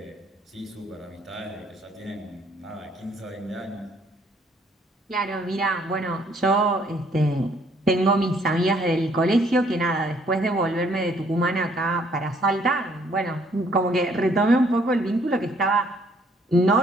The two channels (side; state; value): both; normal; correlation 0.64